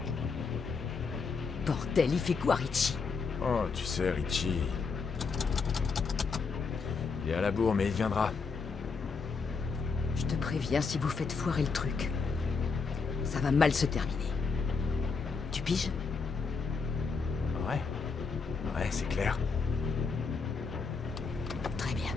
Bordel, il fait quoi, Richie? Oh, tu sais, Richie... Il est à la bourre, mais il viendra. Je te préviens si vous faites foirer le truc. Ça va mal se terminer. Tu piges? Ouais. Ouais, c'est clair. Très bien.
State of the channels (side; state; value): right; quieter; 4.9 dB